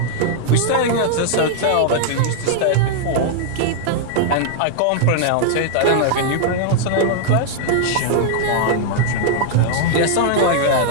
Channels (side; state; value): both; different; correlation -0.01